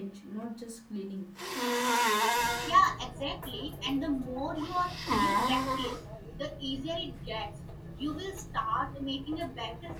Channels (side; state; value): both; identical; correlation 1.00